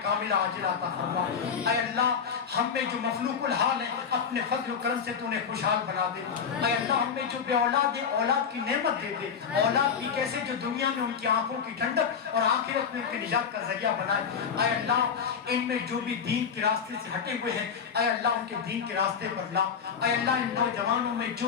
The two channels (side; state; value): right; quieter; 6.8 dB